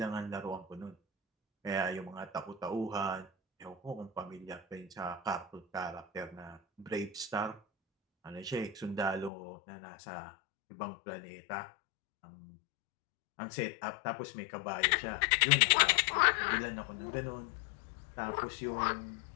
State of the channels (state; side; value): drops out; right; at 9.3 s